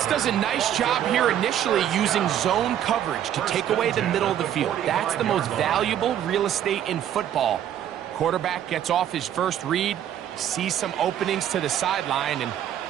does a nice job here initially using zone coverage to take away the middle of the field. That's the most valuable real estate in football. Quarterback gets off his first read, sees some openings to the sideline, and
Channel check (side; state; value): left; quieter; 10.6 dB